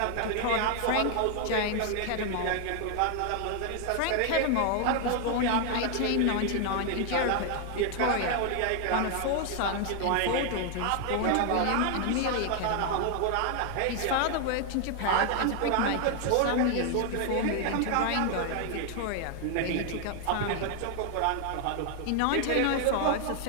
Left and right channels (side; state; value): both; different; correlation 0.00